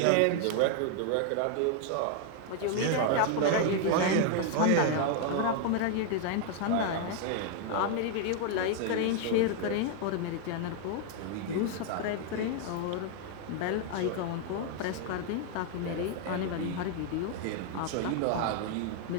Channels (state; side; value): different; both; correlation 0.00